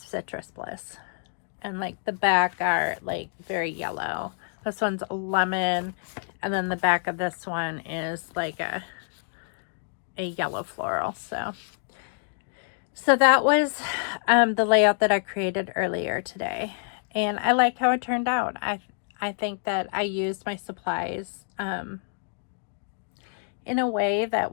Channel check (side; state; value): right; silent; digital silence